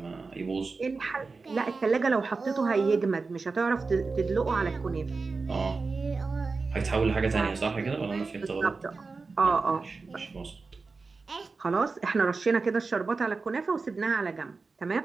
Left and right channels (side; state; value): left; quieter; 4.2 dB